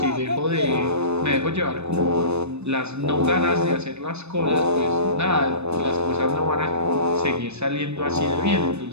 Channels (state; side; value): late; left; 0.81 ms